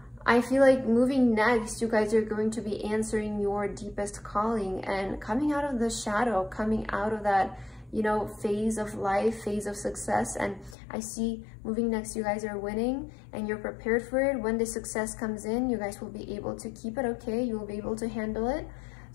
I feel like moving next, you guys are going to be answering your deepest calling and coming out of the shadow, coming out of that, you know, phase of life, phase of success. And I see moving next, you guys are winning and you're prepared for it. When the success comes in, you guys will be able to keep it okay. You will be able to handle it.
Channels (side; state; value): right; drops out; at 10.8 s